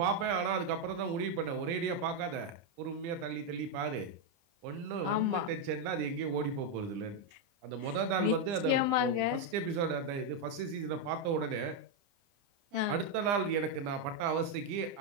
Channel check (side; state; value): left; late; 30 ms